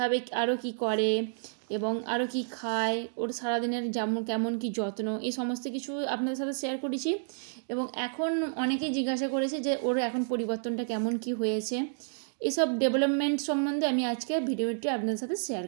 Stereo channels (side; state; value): left; silent; digital silence